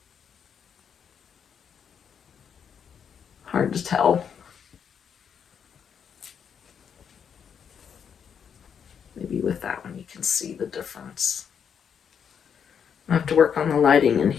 Hard to tell. Maybe with that one you can see the difference. I have to work on the lighting in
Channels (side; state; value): right; quieter; 7.5 dB